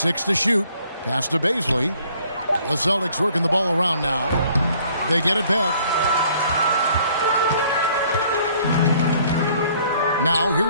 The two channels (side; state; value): both; inverted; correlation -0.60